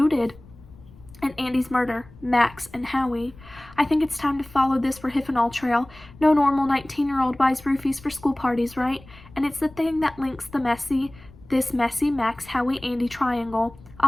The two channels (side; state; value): left; noise; rumble, 22 dB below the sound